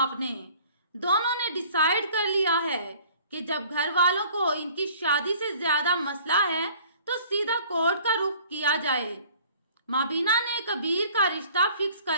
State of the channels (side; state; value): both; inverted; correlation -0.52